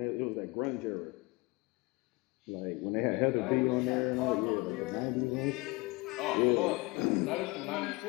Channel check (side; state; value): right; quieter; 24.5 dB